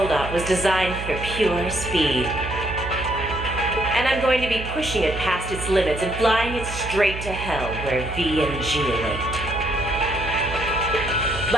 was designed for pure speed. And I'm going to be pushing it past its limits and flying it straight to hell where V and G await.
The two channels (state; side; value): noise; right; hum, 8 dB below the sound